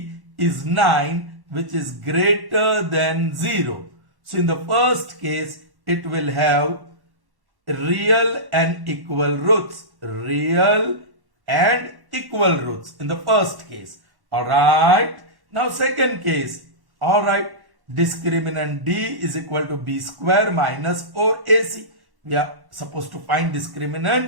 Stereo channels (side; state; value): left; late; 1.1 ms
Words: is 9, which is greater than 0. So in the first case, it will have real and equal roots. Real and equal roots in the first case. Alright. Now second case. Alright. Discriminant d is equal to b square minus 4ac. we are supposed to find